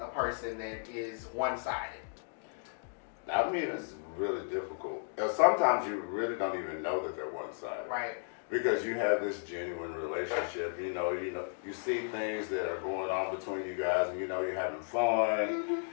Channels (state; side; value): silent; right; digital silence